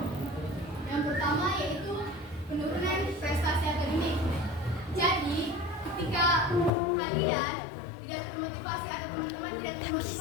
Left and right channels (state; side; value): drops out; right; at 6.7 s